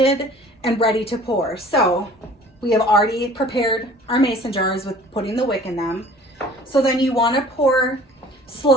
and ready to pour. So we have already prepared our mason jars with putting the wick in them. So then you wanna pour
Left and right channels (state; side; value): normal; both; correlation 0.49